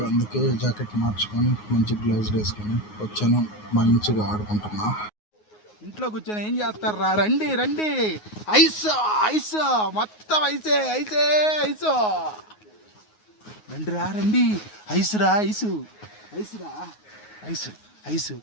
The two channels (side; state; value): right; late; 9.5 ms